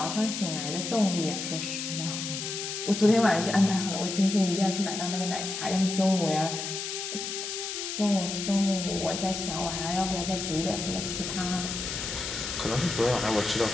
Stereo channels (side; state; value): left; noise; hiss, 5 dB below the sound